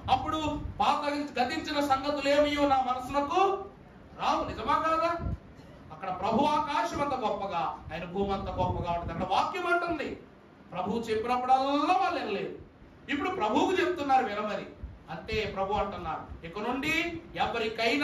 అప్పుడు పాత గతించిన సంగతులు ఏమియో నా మనసునకు రావు. నిజమా కాదా? అక్కడ ప్రభు ఆకాశం అంత గొప్పగా, ఆయన భూమి అంత గొప్పగా ఉంటుంది. అక్కడ వాక్యం అంటుంది, ప్రభు చెప్పినప్పుడల్లా వాళ్ళు వినలేదు. ఇప్పుడు ప్రభువుకు చెప్తున్నారు వినమని. అంతే ప్రభు అంటున్నారు, ఇక నుండి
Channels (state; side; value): identical; both; correlation 1.00